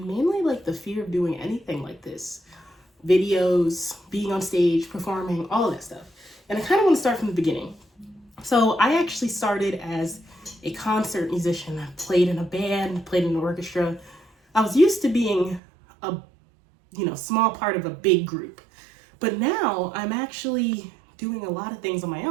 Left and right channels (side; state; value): left; drops out; at 15.6 s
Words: mainly like the fear of doing anything like this. Videos, being on stage, performing, all of that stuff. And I kind of want to start from the beginning. So I actually started as a concert musician. I played in a band, played in an orchestra. I was used to being a small part of a big group. But now I'm actually doing a lot of things on my